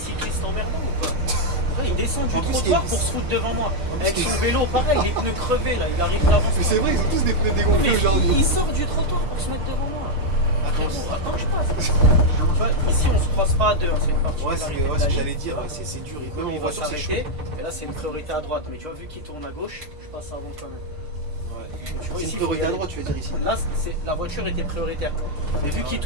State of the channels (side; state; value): left; late; 6.6 ms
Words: emmerdants ou pas? Ouais, il descend du En plus, trottoir il- pour se foutre devant moi. En plus, Avec il- son vélo, pareil, les pneus crevés, là, il arrive d'avance. Mais c'est vrai, ils ont tous des pneus Mais dégonflés aujourd'hui. il sort du trottoir pour se mettre devant moi. Frérot, attends que je passe. Tu vois, ici, on se croise pas à deux, hein, c'est une Ouais, particularité de c'est la ce que ligne. j'allais dire, ouais, c'est dur. Et Même même on en va voiture, c'est chaud. s'arrêter, et là c'est une priorité à droite, mais tu vois, vu qu'il tourne à gauche, je passe avant quand même. Tu vois, C'est ici, une faut priorité y à aller. droite, tu veux dire ici. Là, la voiture était prioritaire. Mais vu qu'il